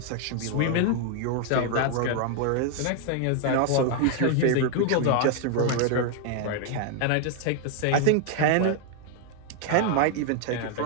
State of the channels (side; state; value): both; different; correlation 0.00